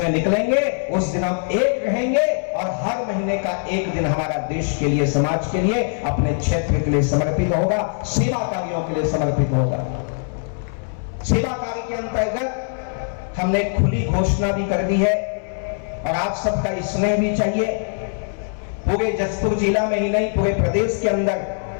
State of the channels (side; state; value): right; silent; 63 dB below the other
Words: में निकलेंगे, उस दिन हम एक रहेंगे और हर महीने का एक दिन हमारा देश के लिए, समाज के लिए, अपने क्षेत्र के लिए समर्पित होगा, सेवा कार्यों के लिए समर्पित होगा। सेवा कार्य के अंतर्गत हमने खुली घोषणा भी कर दी है और आप सबका स्नेह भी चाहिए। पूरे जसपुर जिला में ही नहीं, पूरे प्रदेश के अंदर,